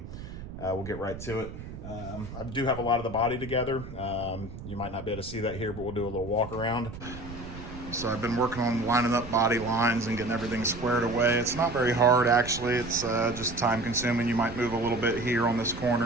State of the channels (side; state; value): right; noise; rumble, 12 dB below the sound